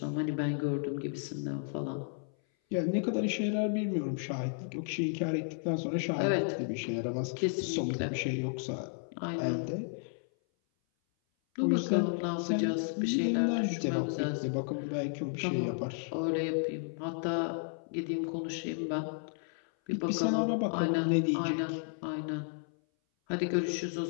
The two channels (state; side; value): silent; right; 56 dB below the other